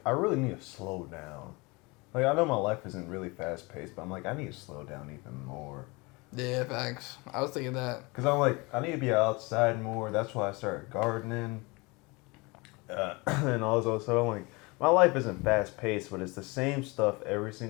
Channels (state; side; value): quieter; right; 26.0 dB